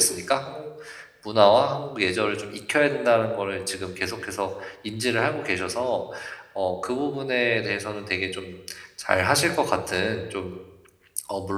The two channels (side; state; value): both; identical; correlation 1.00